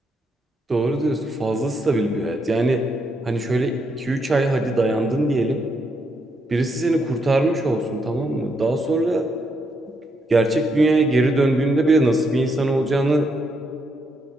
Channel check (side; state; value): both; normal; correlation 0.78